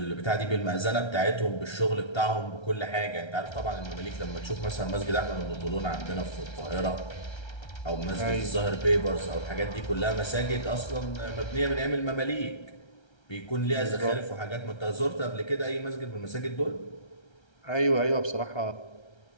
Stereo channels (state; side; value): late; right; 1.3 ms